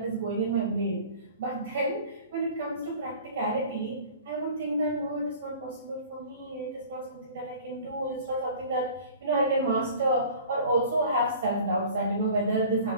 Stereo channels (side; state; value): both; inverted; correlation -0.44